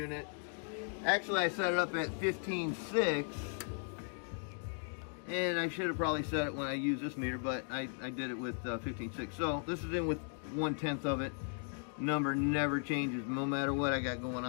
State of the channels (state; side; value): silent; right; 53 dB below the other